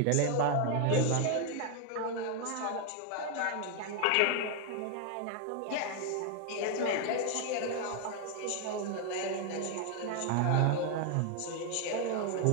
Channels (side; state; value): both; different; correlation 0.00